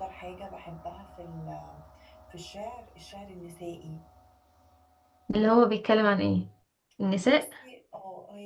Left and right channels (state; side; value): identical; both; correlation 1.00